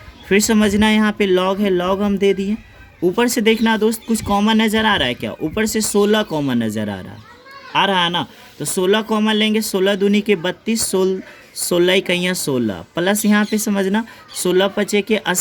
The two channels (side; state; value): both; identical; correlation 1.00